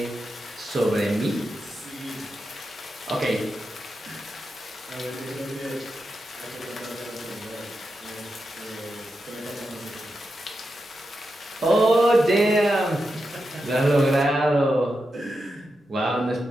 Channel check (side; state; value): both; normal; correlation 0.88